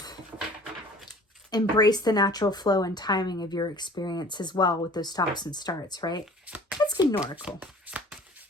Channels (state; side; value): normal; both; correlation 0.47